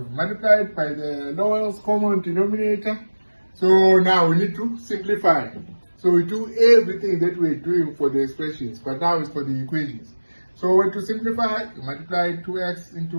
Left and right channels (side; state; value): both; inverted; correlation -1.00